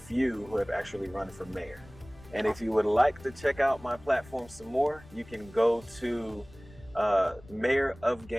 who have actually run for mayor. And if you would like to check out my platform some more, you can go to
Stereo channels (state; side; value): noise; left; rumble, 21 dB below the sound